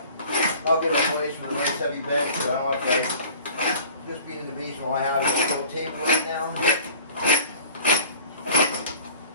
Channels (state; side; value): inverted; both; correlation -0.45